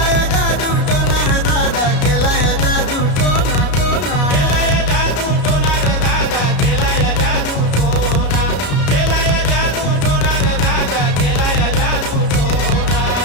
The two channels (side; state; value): right; late; 33 ms